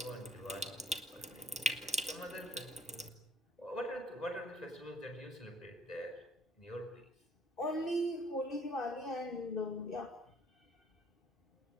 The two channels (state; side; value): normal; both; correlation 0.60